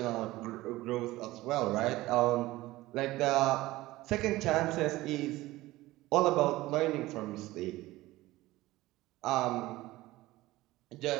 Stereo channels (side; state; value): left; quieter; 18.0 dB